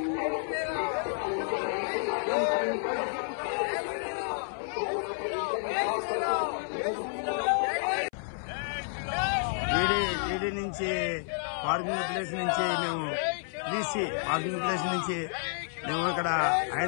ఈడీ నుంచి పార్కింగ్ ప్లేస్ నుంచి మేము బీసీ పార్కింగ్ ప్లేస్ నుంచి మేము ఇక్కడ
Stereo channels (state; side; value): silent; right; 58 dB below the other